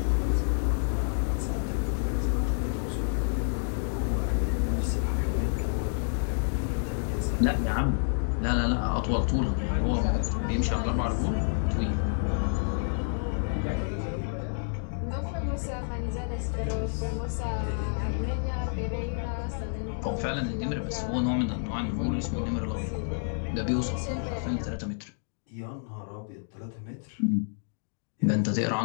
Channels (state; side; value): silent; right; digital silence